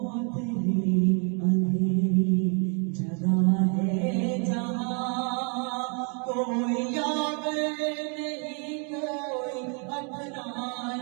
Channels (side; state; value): left; quieter; 38.9 dB